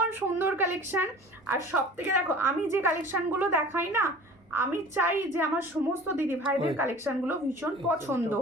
সুন্দর কালেকশান। আর সব থেকে দেখো আমি যে কালেকশানগুলো দেখাই না, আমি চাই যে আমার সমস্ত দিদি ভাইদের কালেকশানগুলো ভীষণ পছন্দ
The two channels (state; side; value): normal; both; correlation 0.43